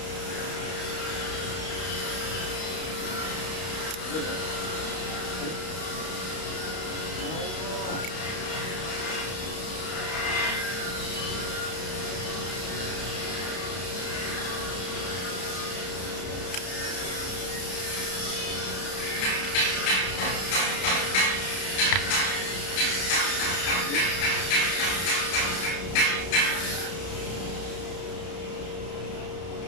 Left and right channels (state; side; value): late; right; 32 ms